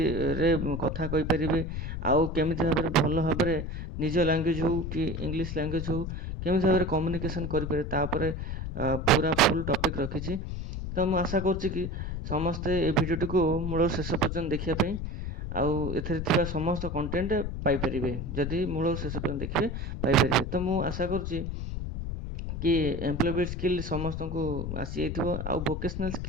रे कथा कहि परिबे आउ केमिति भाबरे भल भाबरे निज लैंग्वेज हो कि इंग्लिश लैंग्वेज हो केमिति भाबरे कम्युनिकेशन करि पारे तापरे पूरा फुल टॉपिक रखी। तो मु आशा करुच्ची कि समस्ते ए भिडियोटी को मूल शेष पर्यंत देखिया पई आउ एथरे थिबा समस्त कंटेंट पाई परिबे जदि मूल शेष पर्यंत देखिबे पाई परिबे। तो मु आशा करुच्ची कि एम्प्लॉयबल स्किल समस्त को आसी जाइथिबो आउ वोकेशनल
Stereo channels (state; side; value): noise; left; rumble, 5 dB below the sound